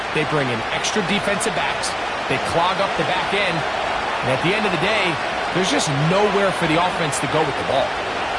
They bring in extra defensive backs. They clog up the back end. And at the end of the day, there's just nowhere for the offense to go with the ball.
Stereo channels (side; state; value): both; identical; correlation 1.00